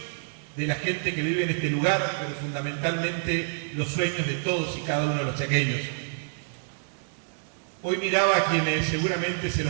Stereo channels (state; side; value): silent; left; digital silence